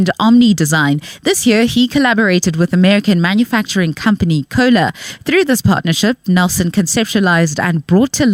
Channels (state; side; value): identical; both; correlation 1.00